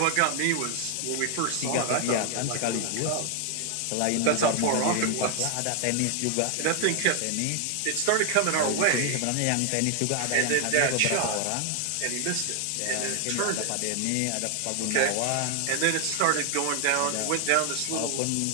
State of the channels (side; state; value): both; different; correlation 0.00